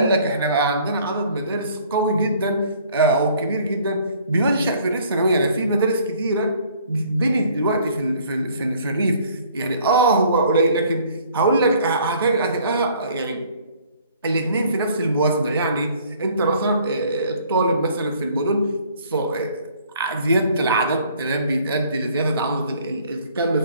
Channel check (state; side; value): inverted; both; correlation -0.58